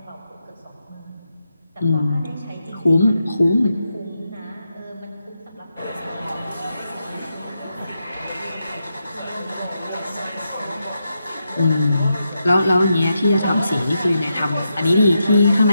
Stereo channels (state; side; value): inverted; both; correlation -0.86